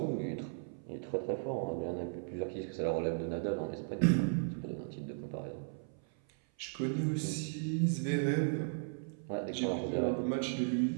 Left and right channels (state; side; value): silent; left; 54 dB below the other